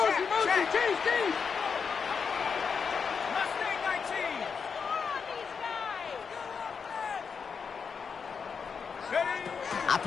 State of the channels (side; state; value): right; quieter; 5.9 dB